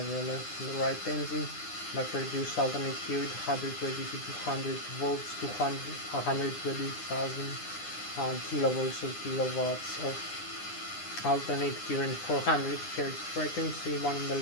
the left and the right engine that produce alternate current 120 to 200 volts to 120,000 kilovolts or kilowatts of alternate current, 400 Hz frequency, one in the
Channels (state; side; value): late; right; 9.8 ms